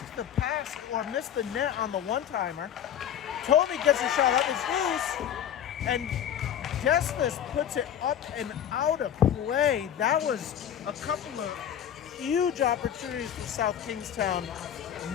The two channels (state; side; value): quieter; right; 9.7 dB